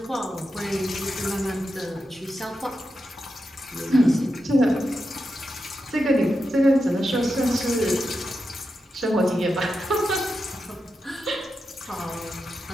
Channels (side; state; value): both; normal; correlation 0.88